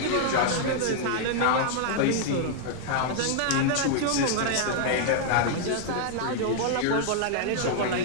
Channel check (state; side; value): different; both; correlation 0.00